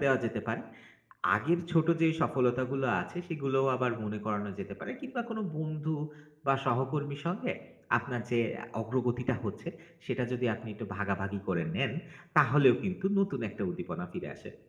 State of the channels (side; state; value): both; identical; correlation 1.00